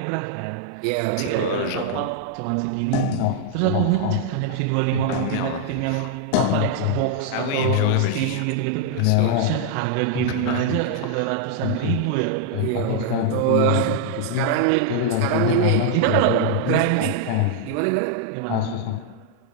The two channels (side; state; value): both; different; correlation 0.00